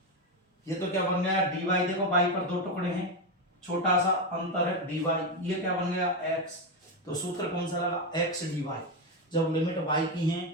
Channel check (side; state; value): both; normal; correlation 0.10